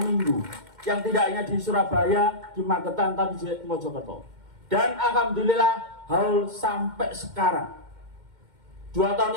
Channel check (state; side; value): late; left; 2.1 ms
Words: yang tidak hanya di Surabaya, di Magetan, tapi di Mojokerto. Dan alhamdulillah Haul sampai sekarang. 2 tahun